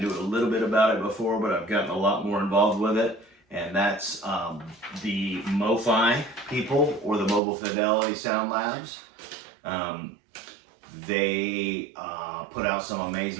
a little bit about it before, but I've gotten a lot more involved with it. And that's the MoFi people, or the Mobile Fidelity Sound Labs. They put out some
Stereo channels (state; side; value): drops out; left; at 7.4 s